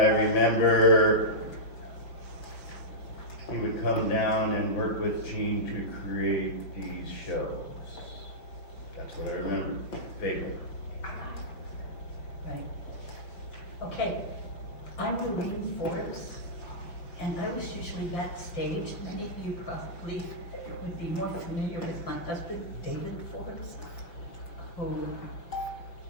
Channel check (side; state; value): right; late; 5.9 ms